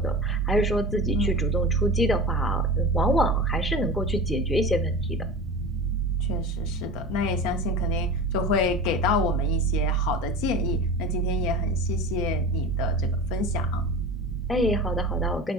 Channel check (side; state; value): both; normal; correlation 0.31